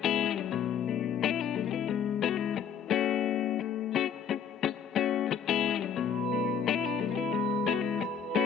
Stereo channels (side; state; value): right; quieter; 7.5 dB